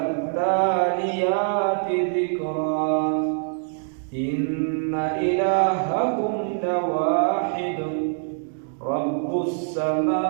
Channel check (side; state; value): left; silent; digital silence